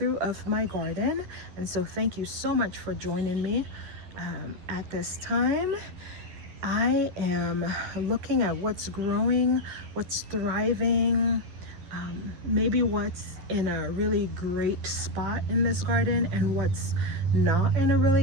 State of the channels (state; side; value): late; left; 11 ms